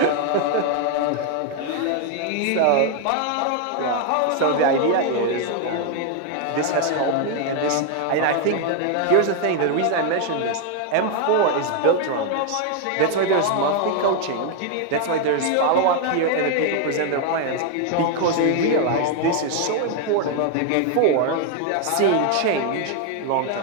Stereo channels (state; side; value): different; both; correlation 0.00